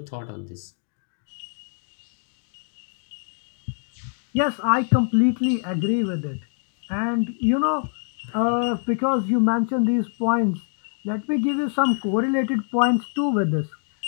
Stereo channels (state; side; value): silent; right; 62 dB below the other